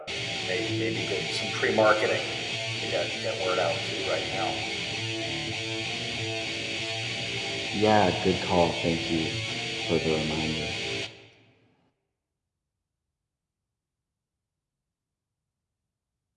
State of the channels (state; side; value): identical; both; correlation 1.00